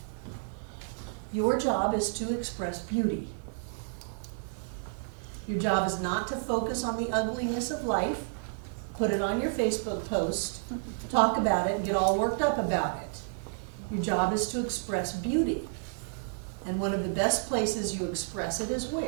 Your job is to express beauty. Your job is not to focus on the ugliness of life, put it on your Facebook post, talk about it, and get all worked up about it. Your job is to express beauty. And one of the best places you express it is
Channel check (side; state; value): left; silent; digital silence